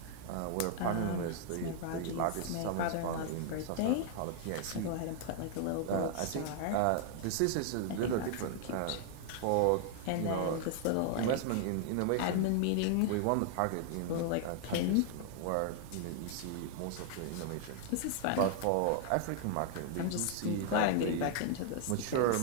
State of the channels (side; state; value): both; different; correlation 0.00